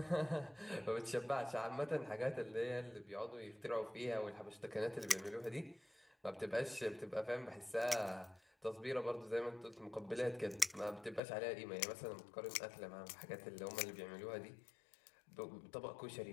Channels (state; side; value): drops out; right; at 11.2 s